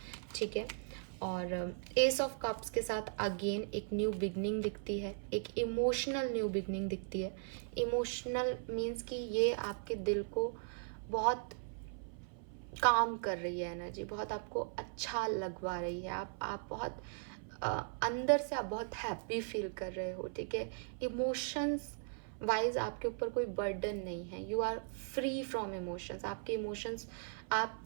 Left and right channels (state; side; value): silent; left; 52 dB below the other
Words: ठीक है। और एस ऑफ कप्स के साथ अगेन एक न्यू बिगनिंग दिखती है, एक इमोशनल न्यू बिगनिंग दिखती है। इमोशनल मीन्स कि ये आपके दिल को बहुत काम कर रही है एनर्जी, बहुत आपको अच्छा लगवा रही है, आप बहुत अंदर से आप बहुत हैप्पी फील कर रहे हो, ठीक है। इमोशंस वाइज आपके ऊपर कोई बर्डन नहीं है, you are free from emotions. आपके इमोशंस